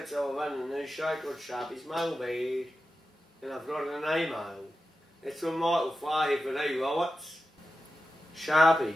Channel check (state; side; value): normal; both; correlation 0.91